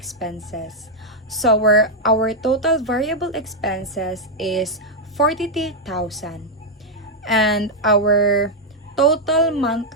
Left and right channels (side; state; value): both; normal; correlation -0.02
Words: So our total variable expenses is 42,000. And our total